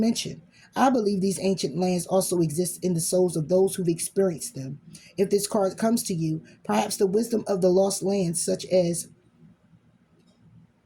I believe these ancient lands also exist in the souls of those who've experienced them. If this card comes to you, perhaps the wisdom of the lost lands, such as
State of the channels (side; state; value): both; identical; correlation 1.00